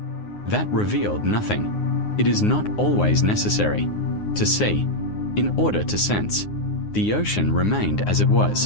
that revealed nothing. It is not always necessary to see in order to sense. The ocean remained as it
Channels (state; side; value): late; right; 9.6 ms